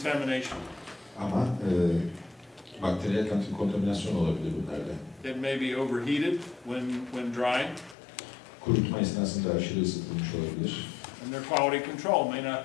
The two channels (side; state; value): right; drops out; at 8.0 s